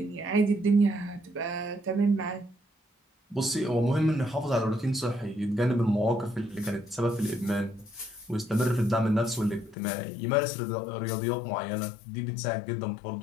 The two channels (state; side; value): drops out; right; at 9.8 s